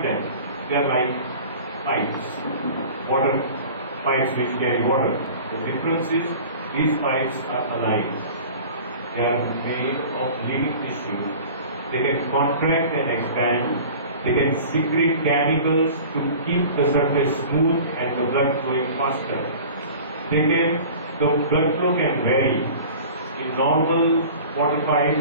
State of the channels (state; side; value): inverted; both; correlation -0.41